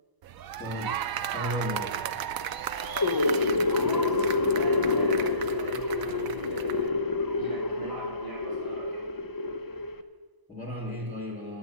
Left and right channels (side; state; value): left; late; 1.0 ms